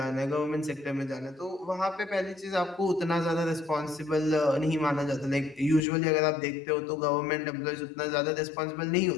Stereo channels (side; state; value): right; drops out; at 5.8 s